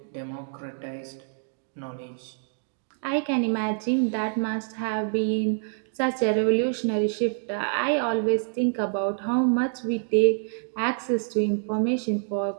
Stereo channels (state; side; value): silent; left; digital silence